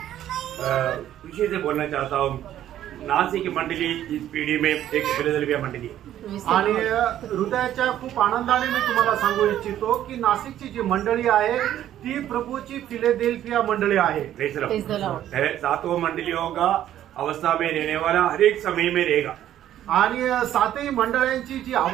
खुशी से बोलना चाहता हूँ, नासिक मंडली इस पीढ़ी में एक फिलाडेल्फिया मंडली है। आणि हृदयाच्या खूप आनंदाने मी तुम्हाला सांगू इच्छितो की नाशिकची जी मंडळी आहे ती प्रभूची फिलाडेल्फिया मंडळी आहे। Praise the Lord. सातों मंडलियों का अवस्था में रहने वाला हर एक समय में रहेगा। आणि सातही मंडळांची जी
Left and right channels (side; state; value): left; quieter; 11.8 dB